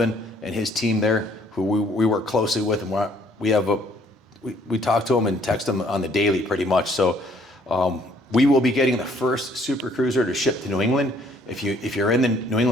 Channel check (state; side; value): normal; both; correlation 0.63